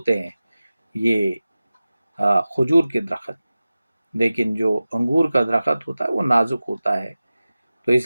ہیں یہ کھجور کے درخت، لیکن جو انگور کا درخت ہوتا ہے وہ نازک ہوتا ہے۔ تو اس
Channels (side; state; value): both; inverted; correlation -0.96